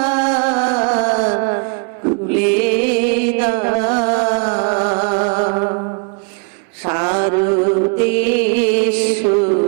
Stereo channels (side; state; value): left; quieter; 34.8 dB